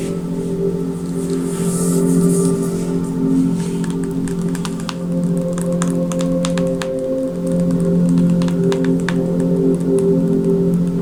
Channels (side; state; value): both; identical; correlation 1.00